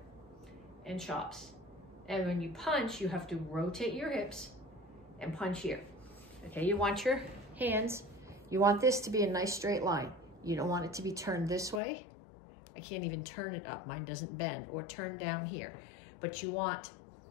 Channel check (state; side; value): drops out; right; at 11.8 s